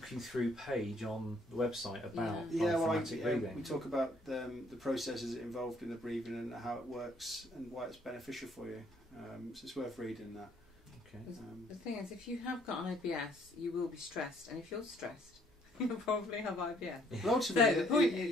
you through page on the website about diaphragmatic breathing. We talk about the processes involved in the breathing and how it works and why it's beneficial for you. So it's worth reading that. Okay. The thing is, if you have got an IBS, you will be stressed, and if you're stressed, you'll probably have IBS. Well, ultimately, So the point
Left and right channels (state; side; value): normal; both; correlation 0.64